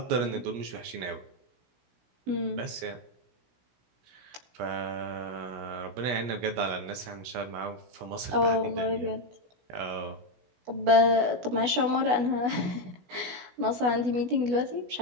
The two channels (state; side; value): late; left; 16 ms